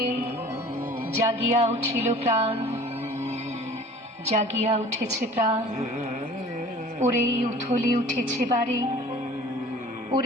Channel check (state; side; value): normal; both; correlation 0.46